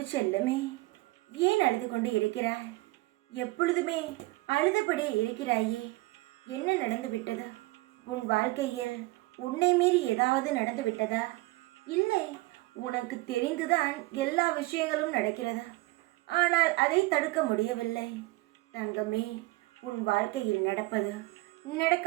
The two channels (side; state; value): left; quieter; 21.7 dB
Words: செல்லமே, ஏன் அழுது கொண்டு இருக்கிறாய்? எப்பொழுதுமே அழுதபடியே இருக்கிறாயே, என்ன நடந்து விட்டது? உன் வாழ்க்கையில் உன்னை மீறி ஏதாவது நடந்து விட்டதா? இல்லை, உனக்கு தெரிந்துதான் எல்லா விஷயங்களும் நடக்கிறது. ஆனால் அதை தடுக்க முடியவில்லை. தங்கமே, உன் வாழ்க்கையில் நடப்பது,